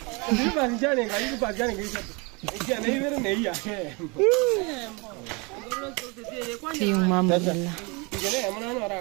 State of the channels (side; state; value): left; quieter; 29.4 dB